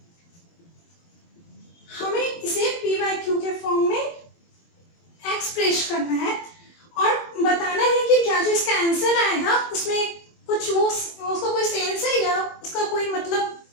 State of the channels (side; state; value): right; late; 23 ms